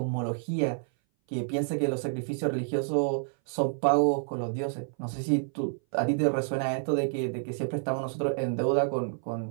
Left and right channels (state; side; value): silent; left; 58 dB below the other